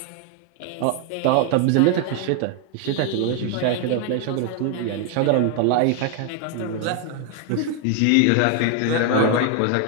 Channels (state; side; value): different; both; correlation 0.01